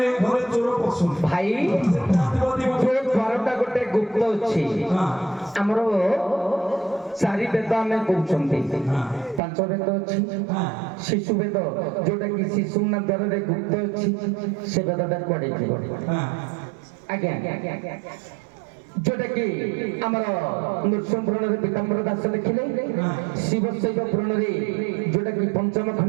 ଘରେ ଚୋର ପଶୁନି ଭାଇ ଯୋଉ ଦ୍ୱାରଟା ଗୋଟେ ଗୁପ୍ତ ଅଛି ଆମର ଚାରି ବେଦ ଆମେ କହୁଛନ୍ତି ପାଞ୍ଚ ବେଦ ଅଛି ଶିଶୁ ବେଦ ଯୋଉଟା କି ଶିଶୁ ନା ଦ୍ୱାରରେ ଗୁପ୍ତ ଅଛି ସେ ବେଦଟା କୁଆଡେ ଥିବ ଆଜ୍ଞା ଯୋଉଟା କି ଆମର ନୃସିଂହ ପୁରାଣରେ ପୀତାମ୍ବର ଦାସ ଲେଖିଲେ ଶିବ ଶୈବ ପୁରାଣରେ ଯୋଉଟା କି ପଞ୍ଚମ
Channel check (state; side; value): drops out; left; at 9.4 s